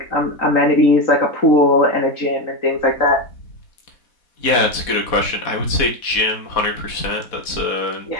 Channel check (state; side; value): late; right; 4.1 ms